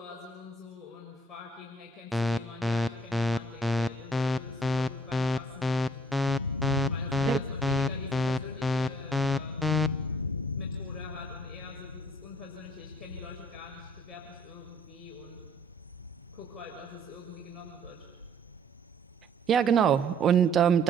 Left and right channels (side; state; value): both; normal; correlation 0.60